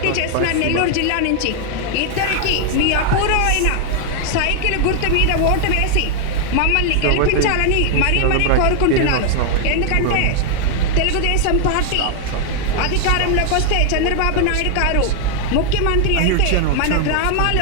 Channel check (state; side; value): different; both; correlation 0.00